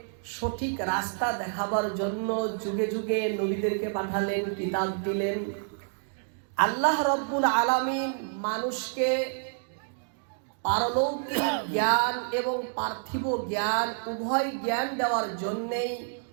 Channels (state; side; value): silent; left; digital silence